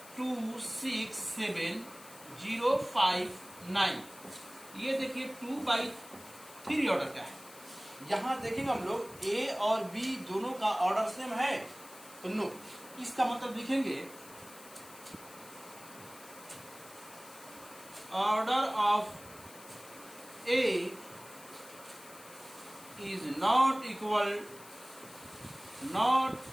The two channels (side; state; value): left; noise; hiss, 18 dB below the sound